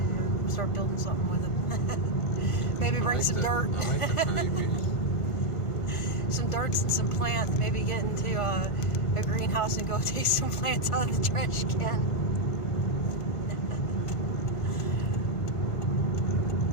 start building something with him. Maybe bring some dirt. I like the honeybees. Some dirts and some plants. Maybe get into a greenhouse and go take some plants out of the trash can.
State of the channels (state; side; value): late; right; 1.5 ms